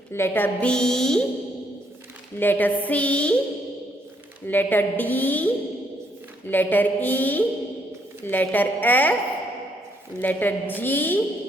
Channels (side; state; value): both; normal; correlation 0.71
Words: letter B, letter C, letter D, letter E, letter F, letter